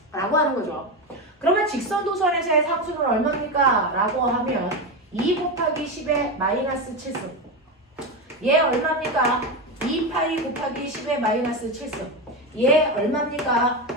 라고 하는 거죠. 그러면 직선 도선에서의 상수는 얼마입니까? 라고 하면 2 곱하기 10의 마이너스 7승. 얘 얼마입니까? 2파이 곱하기 10의 마이너스 7승. 얘 얼마입니까?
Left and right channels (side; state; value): both; normal; correlation 0.15